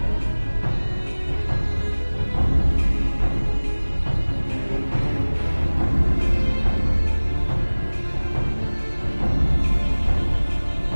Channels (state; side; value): inverted; both; correlation -1.00